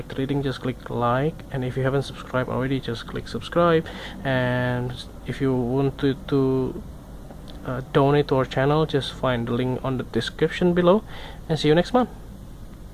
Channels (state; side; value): identical; both; correlation 1.00